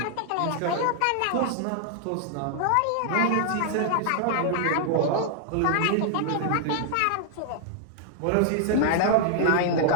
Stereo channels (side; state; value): both; different; correlation 0.00